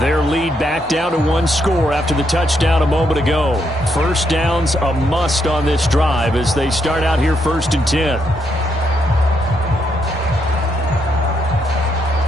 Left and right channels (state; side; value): normal; both; correlation 0.77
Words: lead back down to 1 score after the touchdown a moment ago. First down's a must on this drive as they start out here 1st and 10.